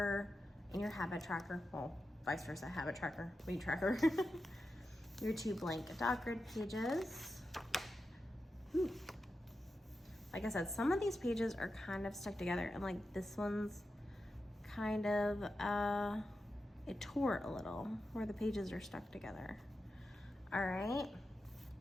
and your habit tracker, well, vice versa, habit tracker, mood tracker. Your 2 blank dot grid pages. Ooh. Like I said, some of these pages are kind of stuck together, and like this one's kind of, it tore a little where the pages are stuck together. All right,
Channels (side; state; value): both; normal; correlation 0.90